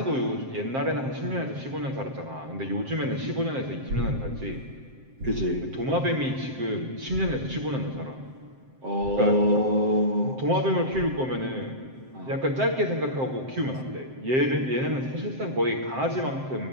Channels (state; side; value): late; left; 7.6 ms